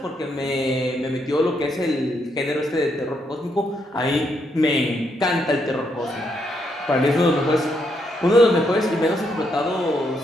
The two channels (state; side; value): normal; both; correlation 0.77